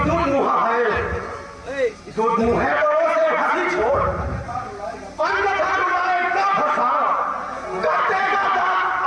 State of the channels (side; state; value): both; identical; correlation 1.00